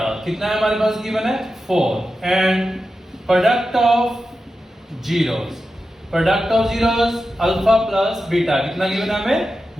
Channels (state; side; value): normal; both; correlation 0.91